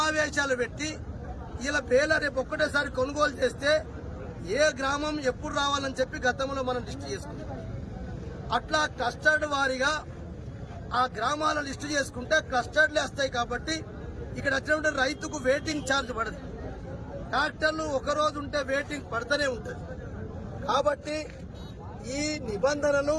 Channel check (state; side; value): identical; both; correlation 1.00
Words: పెట్టి ఇలా బేల రేపు ఒక్కటేసారి కొనుగోలు చేస్తే ఏ గ్రామం ఎప్పుడు రావాలని చెప్పి గతంలో మనం లిస్టు చేసుకున్నాం. అట్లా క్లస్టర్డ్ వారీగా ఆ గ్రామాల లిస్టు చేసుకుంటే క్లస్టర్డ్లే వస్తాయి. కాబట్టి ఇక్కడ వచ్చినప్పుడు రైతుకు వెయిటింగ్ ఛార్జ్ పడదు. ట్రాక్టర్లు ఒక రోజు ఉంటే వెయిటింగ్ పడుతూనే ఉంటుంది. కాబట్టి ఈ నిబంధనలు